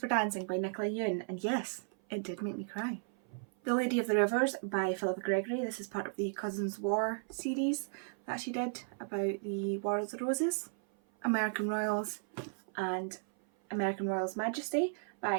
Dancing by Nicola Yoon, and yes, it did make me cry. The Lady of the Rivers by Philippa Gregory. This is part of the Cousins War series that she did about the War of the Roses. American Royals and American Royals Majesty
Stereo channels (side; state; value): left; silent; 55 dB below the other